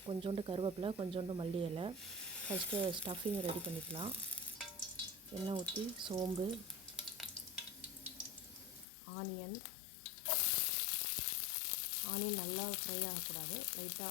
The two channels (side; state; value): right; drops out; at 8.8 s